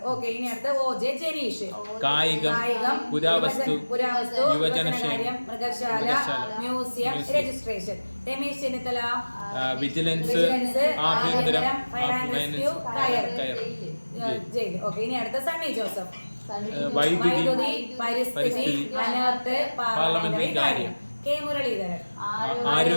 ഓക്കെ. ഇനി അടുത്ത് ഒ ജെ ജനീഷ്. കായികം, പുരാവസ്തു, യുവജനകാര്യം, മൃഗശാല, museum, registration. Ramesh Chennithala vigilance, ആഭ്യന്തരം, fire and rescue, jail. Okay. ഇനി അടുത്ത സണ്ണി ജോസഫ്. വൈദ്യുതി, പരിസ്ഥിതി, അനേർട്ട്, പാർലമെന്ററി കാര്യം. കെ മുരളീധരൻ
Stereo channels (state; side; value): inverted; both; correlation -1.00